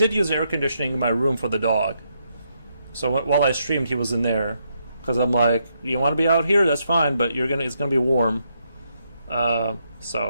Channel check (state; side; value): inverted; both; correlation -0.78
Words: use air conditioning in my room for the dog. So while I streamed, he was in there. because I'm like, you want to be out here, that's fine, but it's gonna be warm.